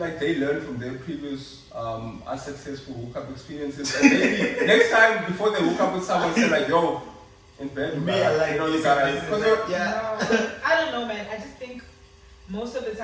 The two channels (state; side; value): identical; both; correlation 1.00